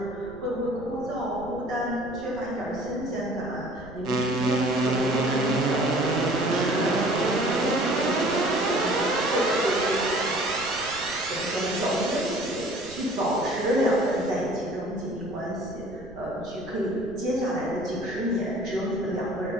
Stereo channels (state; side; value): noise; right; rumble, 19 dB below the sound